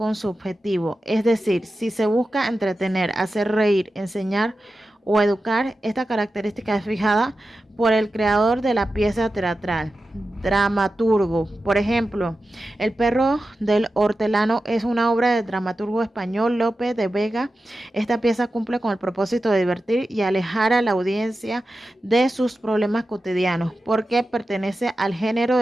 su objetivo, es decir, si se busca entretener, hacer reír, enseñar o educar. Esta característica es fijada por el creador de la pieza teatral, dramaturgo. Por ejemplo, El perro del hortelano es una obra del dramaturgo español Lope de Vega. Esta pieza cumple con el propósito de divertir y alejar a la audiencia de sus problemas cotidianos, porque pertenece al género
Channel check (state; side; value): normal; both; correlation 0.92